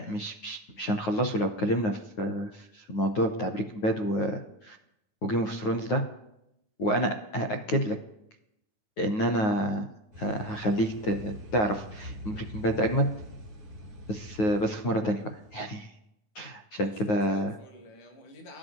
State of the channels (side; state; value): right; late; 9.5 ms